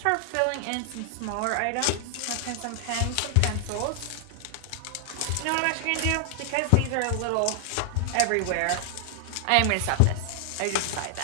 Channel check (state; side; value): different; both; correlation 0.00